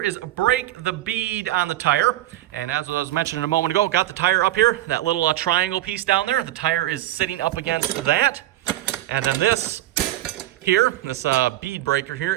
is break the bead on the tire. And as I was mentioning a moment ago, got the tire up here, that little triangle piece down there. The tire is sitting up against that. And then this here, this bead breaker here,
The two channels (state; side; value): quieter; left; 14.9 dB